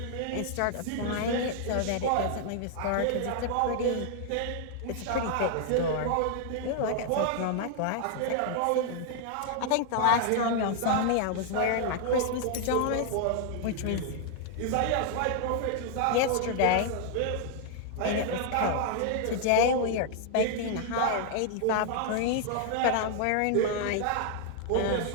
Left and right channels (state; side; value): different; both; correlation 0.00